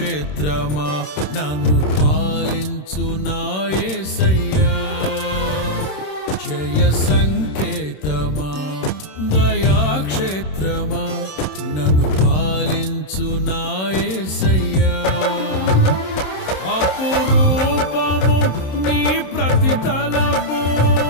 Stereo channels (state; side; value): late; right; 27 ms